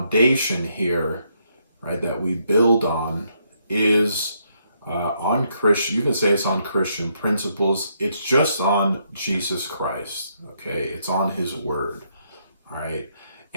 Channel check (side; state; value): both; inverted; correlation -0.75